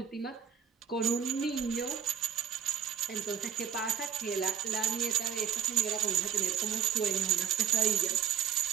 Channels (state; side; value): quieter; left; 8.1 dB